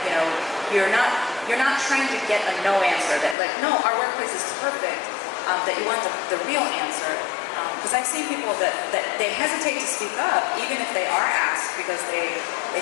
you're not trying to get a no answer, that like, no, our workplace is perfect, that you want the real answer. Because I've seen people that they hesitate to speak up, even if they are asked, because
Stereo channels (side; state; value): right; drops out; at 3.4 s